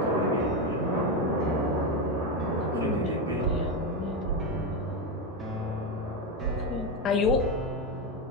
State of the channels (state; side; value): normal; both; correlation 0.11